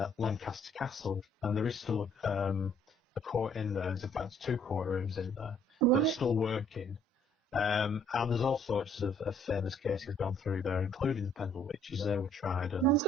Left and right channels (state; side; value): normal; both; correlation 0.63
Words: Castle, and there is still a court in there. There's in fact two courtrooms in there that are still working. And there's all sorts of famous cases gone through there, including the Pendle witches. They were tried. And I was